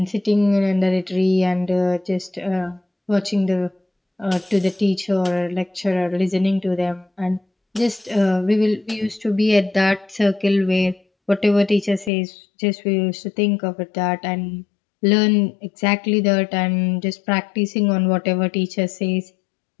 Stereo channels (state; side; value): drops out; right; at 12.1 s